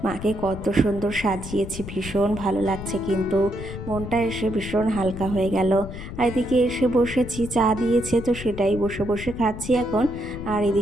মাকে কত সুন্দর সাজিয়েছি, ভীষণ ভালো লাগছে, কিন্তু মনটা এসে ভীষণ হালকা হয়ে গেল। আর এদিকে এসে বসেছি, চা দিয়েছে তো সেটাই বসে বসে খাচ্ছি এখন। আর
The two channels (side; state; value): left; noise; rumble, 10 dB below the sound